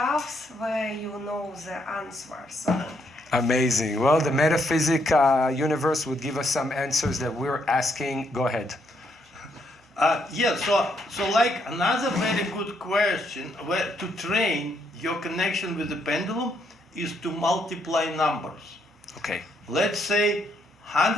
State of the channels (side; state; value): both; normal; correlation 0.74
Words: where you know the answer. So. Amazing. Well, the metaphysic universe would give us some answers that we're asking. Go ahead. So like another very good question where to train your connection with the pendulum is to multiply numbers. Okay. Let's say